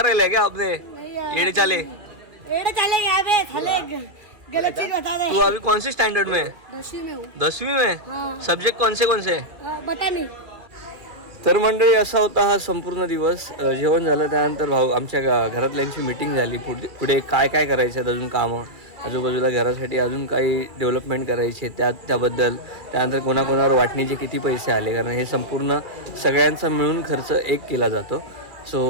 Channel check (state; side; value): late; left; 2.3 ms